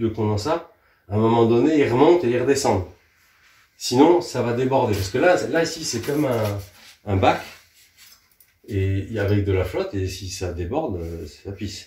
condensat, à un moment donné, il remonte et il redescende. Sinon, ça va déborder. Parce que là ici, c'est comme un bac et avec de la flotte, et si ça déborde, ça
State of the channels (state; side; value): identical; both; correlation 1.00